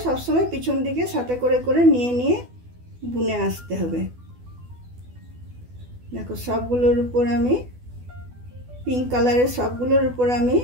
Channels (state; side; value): late; left; 12 ms